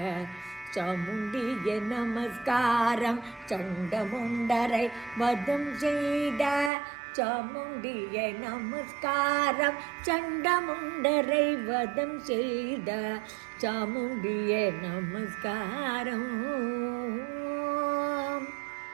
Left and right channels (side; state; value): left; drops out; at 6.7 s